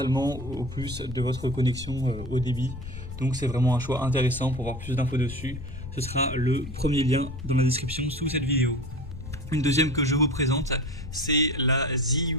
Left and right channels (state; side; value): noise; left; rumble, 11 dB below the sound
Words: au plus de votre connexion au débit. Donc c'est vraiment un choix intéressant. Pour voir plus d'infos dessus, ce sera le premier lien dans la description sous cette vidéo. Une deuxième que je vous présente, c'est la